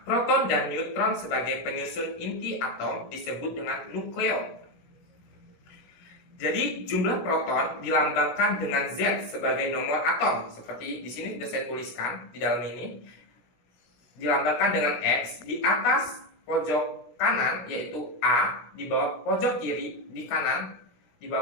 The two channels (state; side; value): late; right; 16 ms